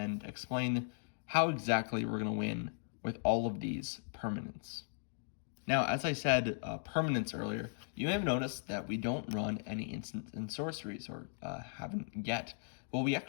explain how exactly we're going to win with all of these permanents. Now, as I said, permanents earlier, you may have noticed that we don't run any instants and sorceries, or haven't yet. Well, we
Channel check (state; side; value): silent; right; digital silence